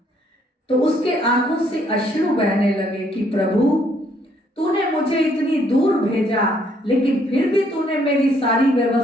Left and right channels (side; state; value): both; normal; correlation 0.68